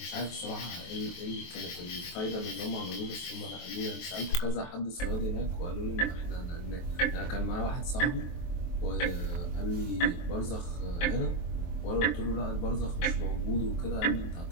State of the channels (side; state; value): right; late; 23 ms